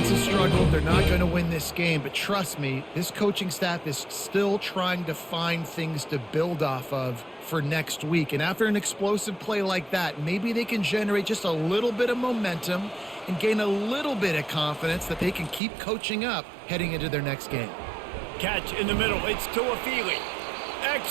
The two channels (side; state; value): left; drops out; at 15.6 s